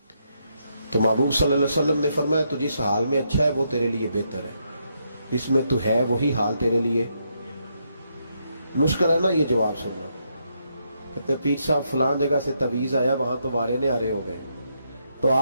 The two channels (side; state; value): both; inverted; correlation -0.78